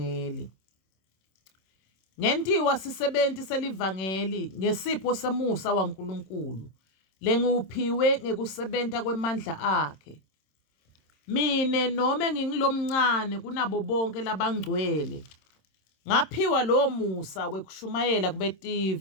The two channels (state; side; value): late; right; 26 ms